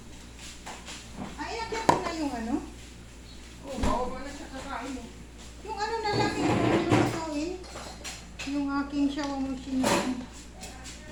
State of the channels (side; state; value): both; identical; correlation 1.00